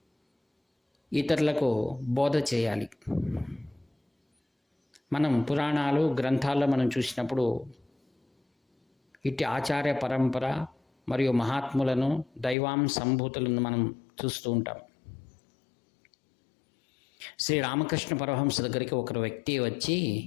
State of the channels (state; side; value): drops out; right; at 12.6 s